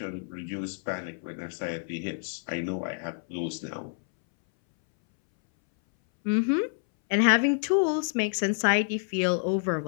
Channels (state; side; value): silent; right; 59 dB below the other